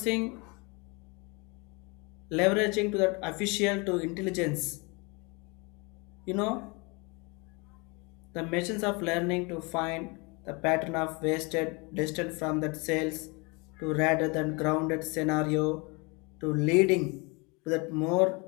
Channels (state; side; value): quieter; right; 29.0 dB